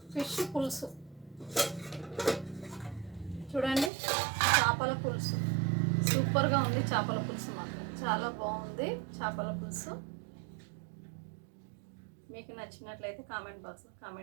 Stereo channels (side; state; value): left; drops out; at 3.9 s